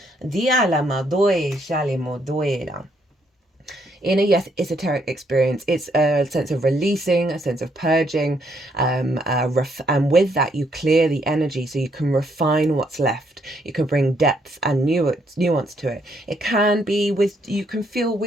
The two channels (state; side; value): normal; both; correlation 0.72